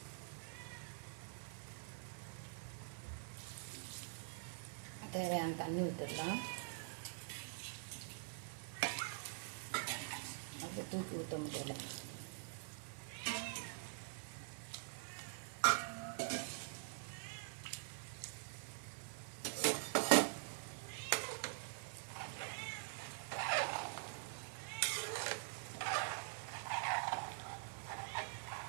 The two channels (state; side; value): silent; left; digital silence